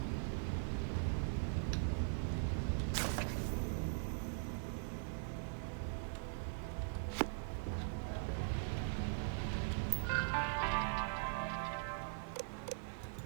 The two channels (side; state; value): left; silent; digital silence